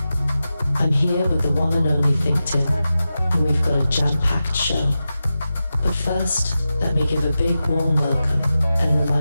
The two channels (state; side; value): inverted; both; correlation -0.92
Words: I'm here with the one and only ThinkTimm, and we've got a jam-packed show. But first, let me give a big warm welcome and